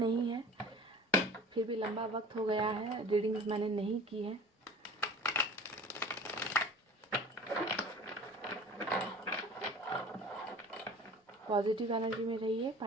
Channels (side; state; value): both; normal; correlation 0.42